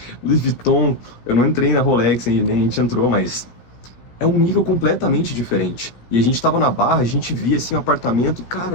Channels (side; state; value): right; late; 16 ms